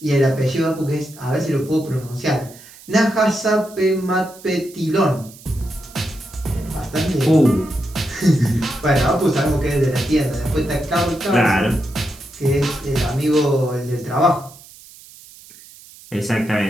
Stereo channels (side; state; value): right; noise; hiss, 21 dB below the sound